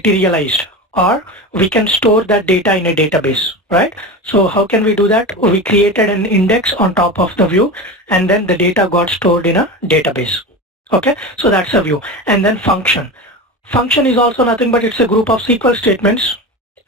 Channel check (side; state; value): both; normal; correlation 0.26